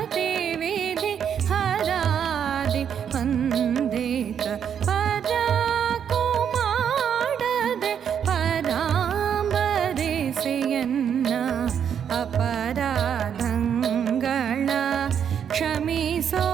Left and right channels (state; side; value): quieter; left; 8.3 dB